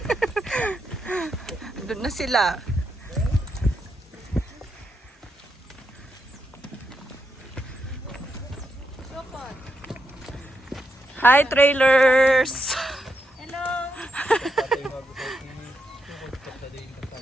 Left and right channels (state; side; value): normal; both; correlation 0.83